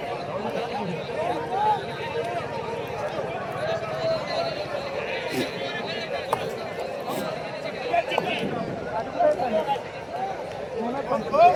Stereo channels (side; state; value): both; identical; correlation 1.00